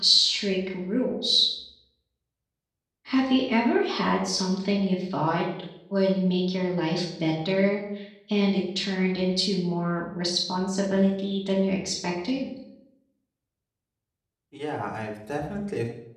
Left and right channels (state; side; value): identical; both; correlation 1.00